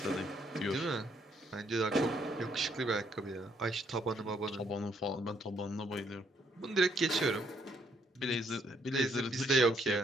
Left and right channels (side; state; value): both; normal; correlation 0.70